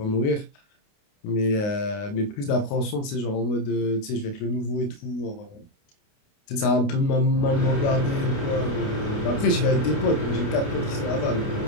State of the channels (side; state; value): right; late; 29 ms